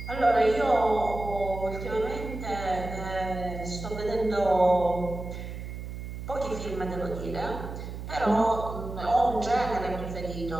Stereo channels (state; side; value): noise; right; hum, 8 dB below the sound